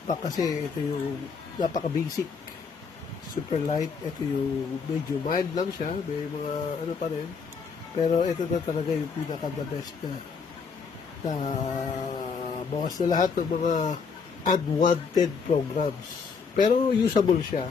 kasi ito yung napaka-basic. Superlight, ito yung medyo mild lang siya. May mga ano pa rin. Pero ito na talaga yung pinaka-the best na bawas na lahat ng mga unwanted programs. Pero usable siya.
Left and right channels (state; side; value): quieter; right; 5.5 dB